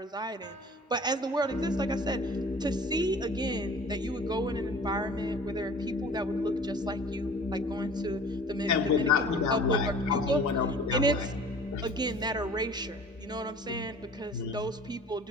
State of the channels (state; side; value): normal; both; correlation 0.46